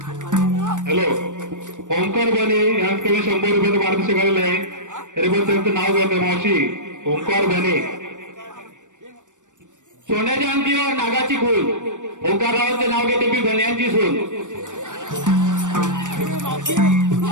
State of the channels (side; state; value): left; late; 0.86 ms